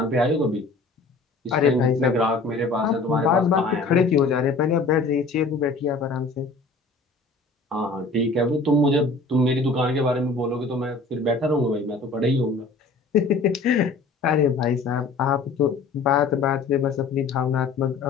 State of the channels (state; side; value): quieter; right; 3.8 dB